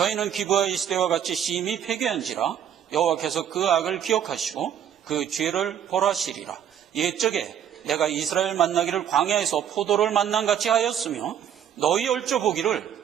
기브아 이스대와 같이 심히 패괴한지라 여호와께서 그 악을 기억하시고 그 죄를 벌하시리라. 옛적에 내가 이스라엘 만나기를 광야에서 포도를 만난같이 하였으며 너희 얼져보기를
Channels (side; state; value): left; quieter; 9.4 dB